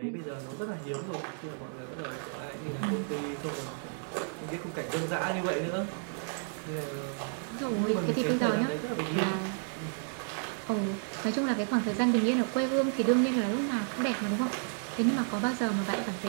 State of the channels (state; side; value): silent; left; 57 dB below the other